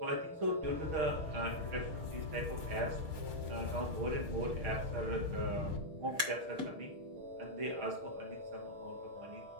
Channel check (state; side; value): late; left; 6.6 ms